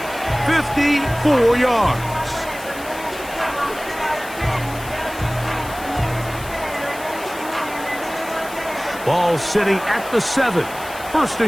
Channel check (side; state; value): left; noise; hiss, 16 dB below the sound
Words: 54 yards. Ball sitting at the 7. First